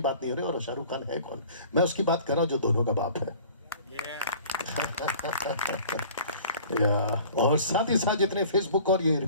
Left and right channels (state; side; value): inverted; both; correlation -0.47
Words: नहीं हो रही, और शाहरुख खान है कौन? मैं उसकी बात कर रहा हूं जो दोनों का बाप है। और साथ ही साथ जितने फेसबुक और ये